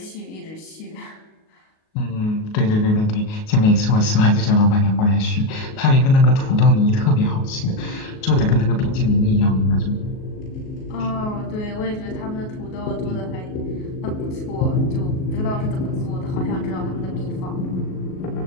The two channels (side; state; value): right; late; 38 ms